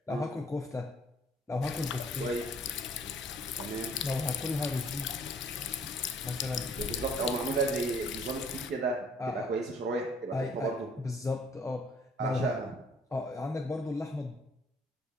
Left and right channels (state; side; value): normal; both; correlation 0.59